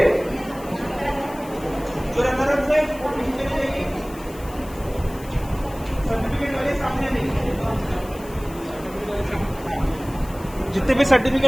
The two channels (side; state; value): left; noise; hiss, 20 dB below the sound